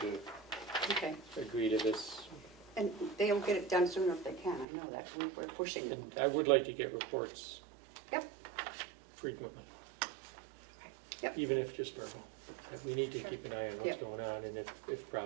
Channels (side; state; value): left; drops out; at 4.7 s